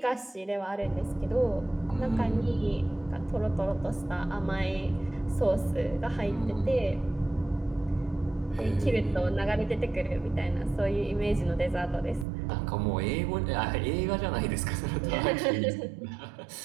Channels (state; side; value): drops out; left; at 12.2 s